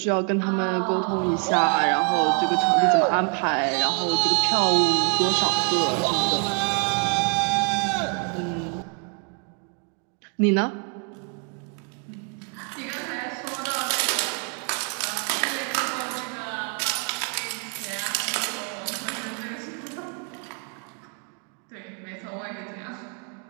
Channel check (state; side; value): quieter; left; 37.0 dB